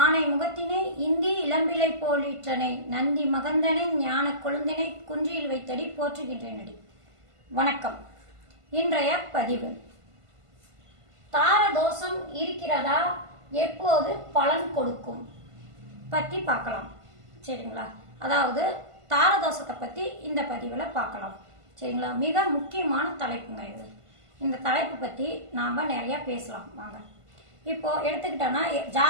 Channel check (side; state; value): left; late; 1.5 ms